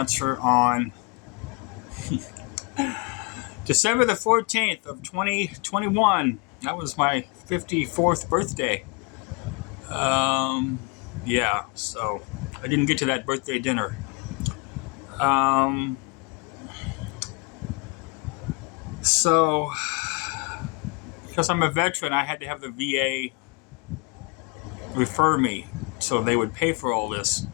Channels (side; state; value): right; quieter; 31.2 dB